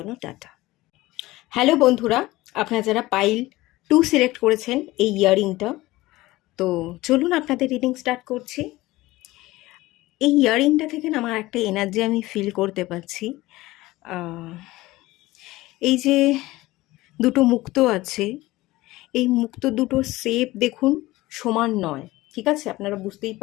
টাটা। হ্যালো বন্ধুরা, আপনারা যারা পাইল 2 সিলেক্ট করেছেন এই ইয়াররিংটা, তো চলুন আপনাদের রিডিং স্টার্ট করছি। এই ইয়ারিংটা থেকে না আমার একটা এনার্জি আমি ফিল করতে পারছি। আহ, এই যে দুটো মুক্ত আছে, এই মুক্ত দুটোর শেপ দেখুন সমান নয়, ঠিক আছে? আপনারা বুঝতেই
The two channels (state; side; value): quieter; right; 18.6 dB